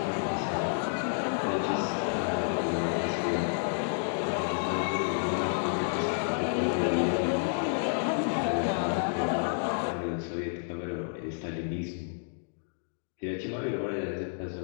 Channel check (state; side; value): silent; right; digital silence